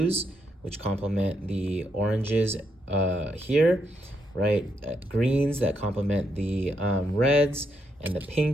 which complement the oranges here, right? Greens that complement the reds and the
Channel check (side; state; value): both; normal; correlation 0.79